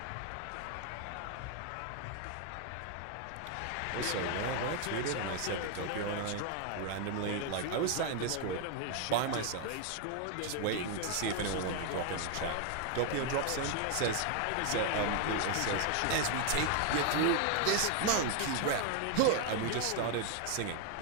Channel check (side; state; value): both; different; correlation 0.01